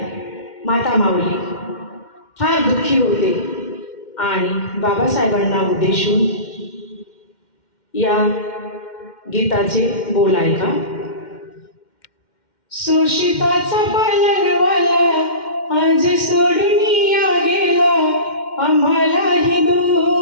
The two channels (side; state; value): right; late; 2.1 ms